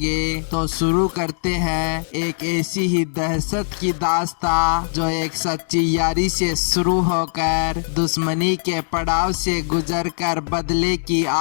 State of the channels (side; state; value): right; silent; digital silence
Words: तो शुरू करते हैं एक ऐसी ही दहशत की दास्तां जो एक सच्ची यारी से शुरू होकर दुश्मनी के पड़ाव से गुजरकर बदले की